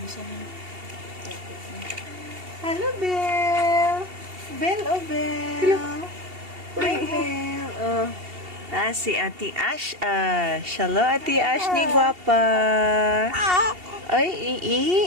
Hello, Belle. Belle, oh, Belle. Hi, Belle. Si Ate Ash. Hello, Ate Ash ni Guwapa.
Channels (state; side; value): late; left; 2.8 ms